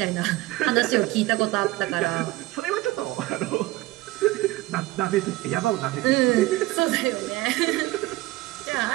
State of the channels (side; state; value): left; quieter; 18.6 dB